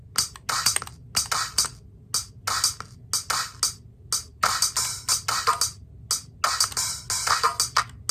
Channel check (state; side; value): identical; both; correlation 1.00